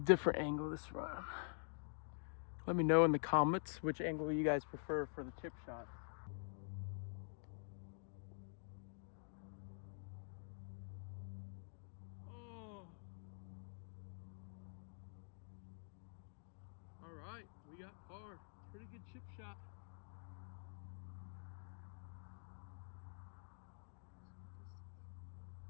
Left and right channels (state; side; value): silent; right; digital silence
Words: angle this round. Let me know in the comments which angle you guys prefer for the chip shot. Oh. All right, we got par. Pretty good chip shot.